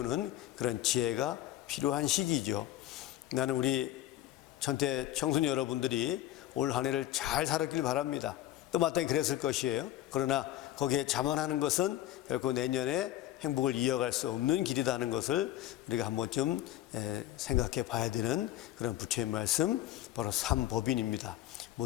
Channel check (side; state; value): right; quieter; 13.7 dB